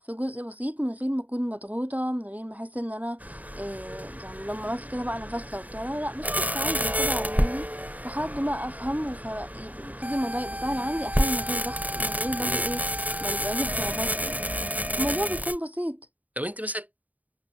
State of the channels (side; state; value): left; late; 0.075 ms